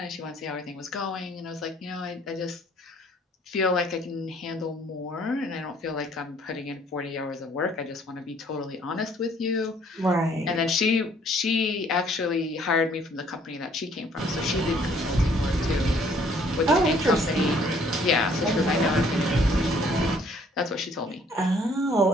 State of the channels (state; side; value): normal; both; correlation 0.61